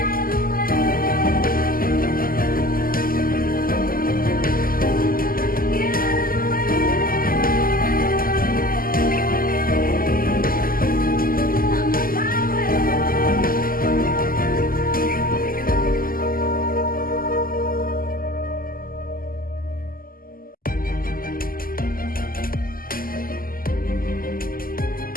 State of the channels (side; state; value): right; late; 0.42 ms